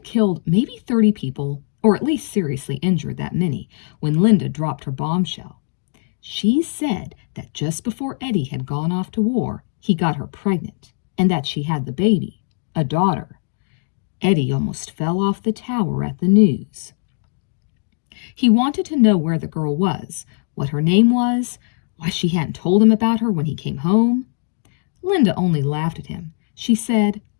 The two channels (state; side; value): silent; right; digital silence